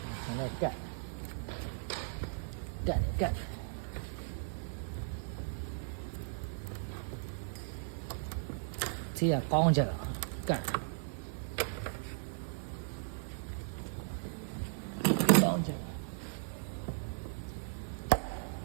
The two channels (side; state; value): left; silent; 53 dB below the other